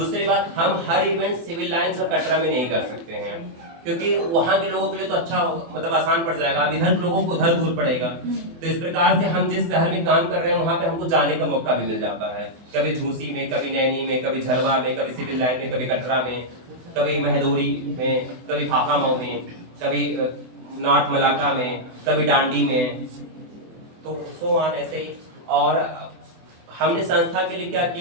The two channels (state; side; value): late; left; 24 ms